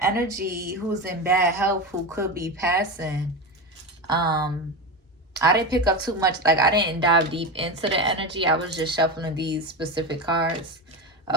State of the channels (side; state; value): both; normal; correlation 0.19